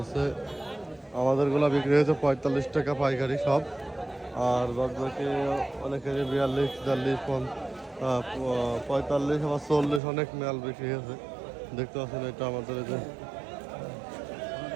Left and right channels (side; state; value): left; drops out; at 10.0 s